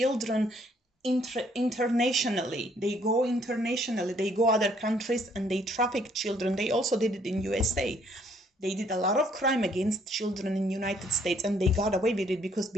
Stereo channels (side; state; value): both; normal; correlation 0.65